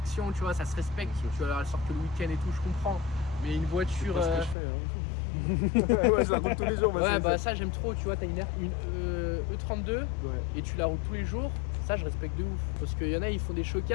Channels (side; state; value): right; drops out; at 4.5 s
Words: tu vois, ça se respecte. Tu vois, elle sort que le week-end et tout, je comprends. Mais une voiture. C'est pas ce que je fais. Hein. Ouais, je la roule tous les jours. ma Ouais, série bah 7. ça j'aime trop, tu vois, t'as une E32 Ouais. et tu la roules tous les jours. Ça je respecte de ouf. Parce qu'il y en a, ils font des